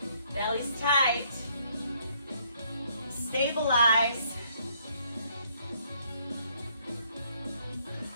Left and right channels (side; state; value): both; inverted; correlation -0.68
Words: Belly's tight. Stabilize.